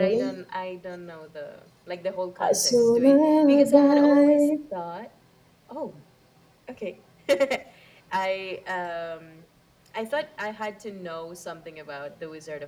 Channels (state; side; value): identical; both; correlation 1.00